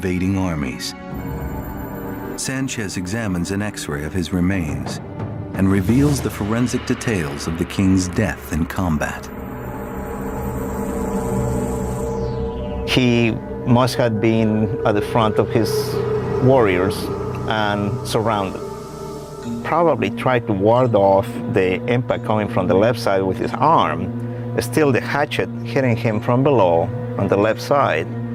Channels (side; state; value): both; identical; correlation 1.00